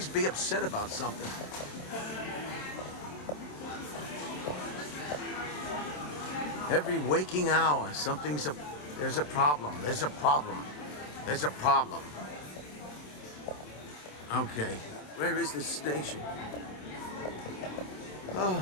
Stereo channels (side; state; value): right; late; 27 ms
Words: be upset about something. Every waking hour, there's a problem. Okay, where is this station? Oh.